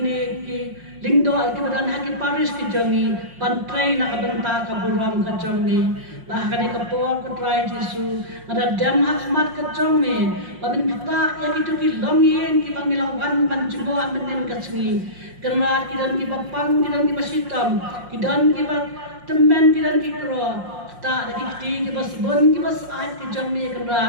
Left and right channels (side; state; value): left; late; 5.6 ms